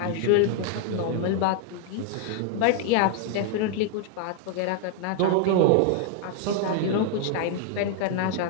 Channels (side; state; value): both; different; correlation 0.00